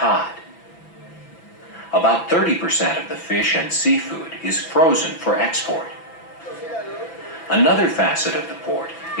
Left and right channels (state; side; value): late; right; 5.9 ms